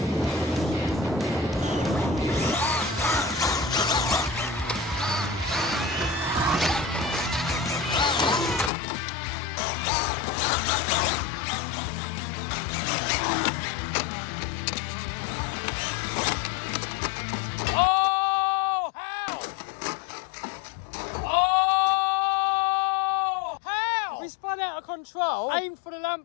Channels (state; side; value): drops out; right; at 8.7 s